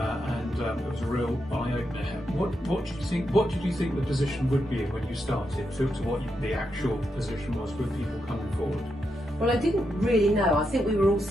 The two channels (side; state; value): both; normal; correlation 0.84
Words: it was a real eye-opener. What did you think? What did you think the position would be when you started to what the actual position was with people coming forward? Well, I didn't really know. I think we were all